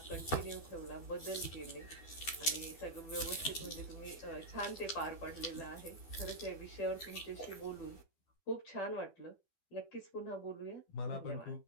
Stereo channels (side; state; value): right; late; 12 ms